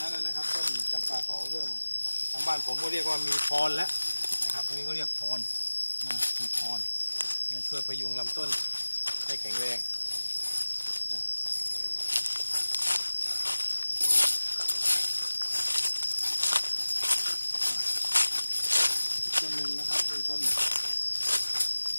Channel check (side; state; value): both; inverted; correlation -1.00